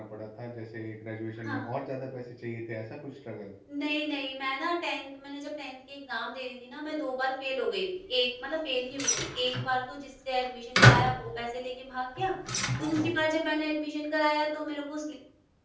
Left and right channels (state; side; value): identical; both; correlation 1.00